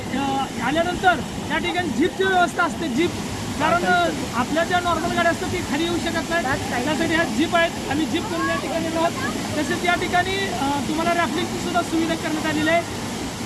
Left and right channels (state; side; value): identical; both; correlation 1.00